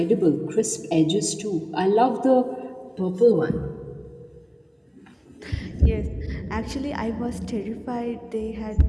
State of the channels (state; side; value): identical; both; correlation 1.00